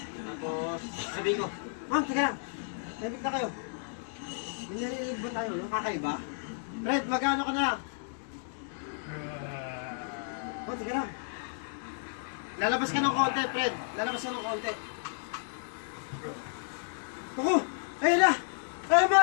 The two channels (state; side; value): silent; right; digital silence